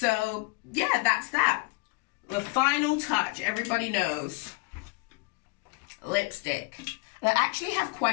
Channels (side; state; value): right; quieter; 28.5 dB